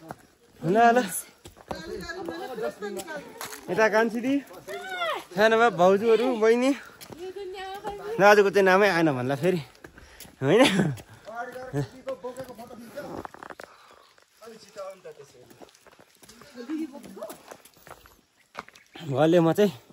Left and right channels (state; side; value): identical; both; correlation 1.00